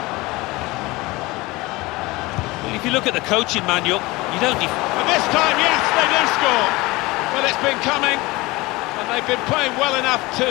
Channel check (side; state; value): right; quieter; 21.8 dB